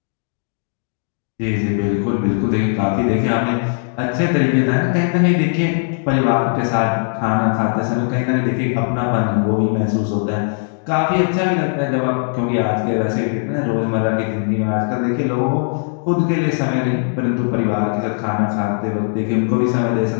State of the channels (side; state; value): right; silent; 64 dB below the other